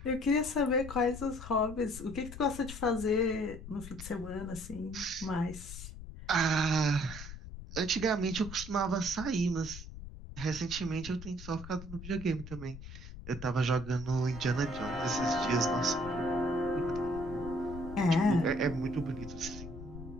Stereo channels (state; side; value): noise; left; rumble, 12 dB below the sound